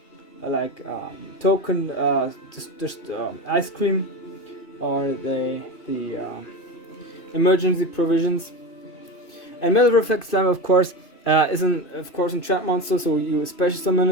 like token, just ice cream, or the emergency provisions. And Metal Reflect Slime, of course, is a trap monster, so you special summon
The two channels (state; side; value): late; right; 2.8 ms